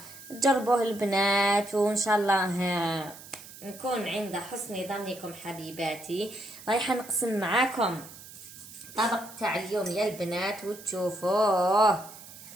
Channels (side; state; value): right; noise; hiss, 17 dB below the sound